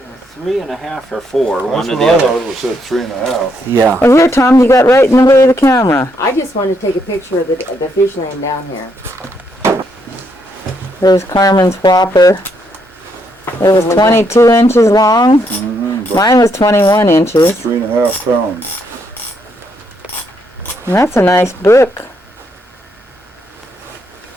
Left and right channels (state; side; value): normal; both; correlation 0.75